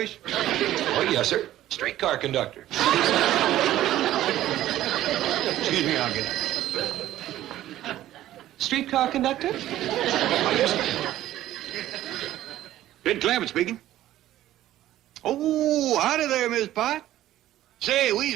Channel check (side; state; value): left; quieter; 13.7 dB